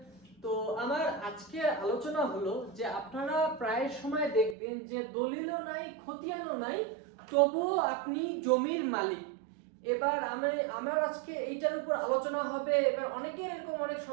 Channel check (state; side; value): drops out; left; at 4.5 s